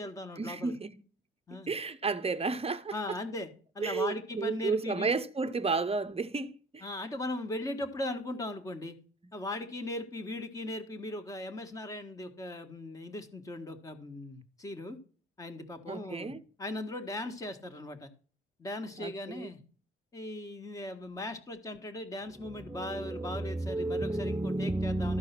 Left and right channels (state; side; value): normal; both; correlation 0.54